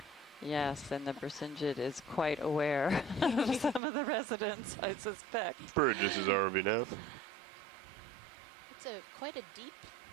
Yes, and the Bersinget is quite aware of some of the residents, I suspect. Bridges is RVNAV. It's quite a deep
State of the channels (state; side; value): drops out; left; at 3.8 s